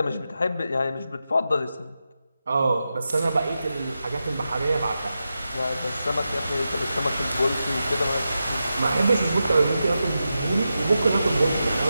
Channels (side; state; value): both; inverted; correlation -0.89